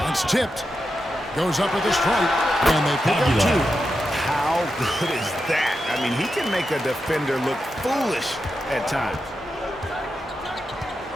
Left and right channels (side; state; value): both; normal; correlation 0.88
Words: It's tipped. Goes up with a strike. And they pick up 2. How good is that? I mean, he can make a defender look foolish at times.